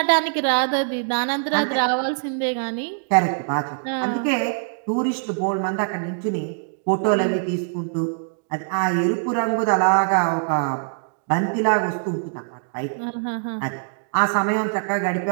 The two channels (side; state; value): left; silent; digital silence